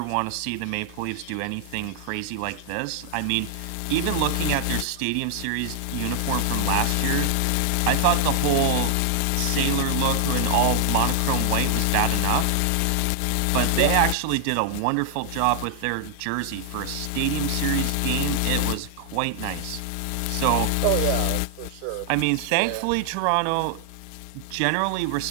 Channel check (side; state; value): both; different; correlation 0.00